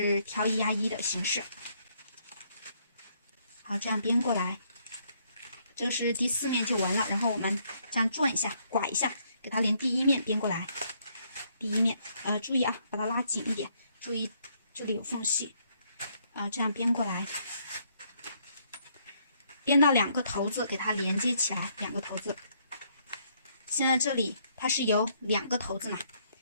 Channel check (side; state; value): both; inverted; correlation -0.70